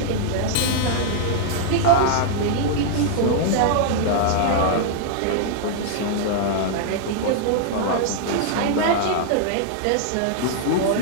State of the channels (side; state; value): both; different; correlation -0.01